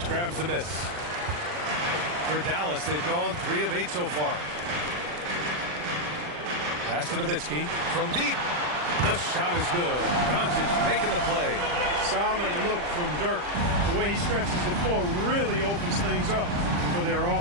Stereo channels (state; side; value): late; left; 40 ms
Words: grabs the miss. For Dallas, they've gone 3 of 8 so far. Pass to Nowitzki from deep. The shot is good. Doncic making the play. Solid look from Dirk. The way he stretches the floor really opens things up for their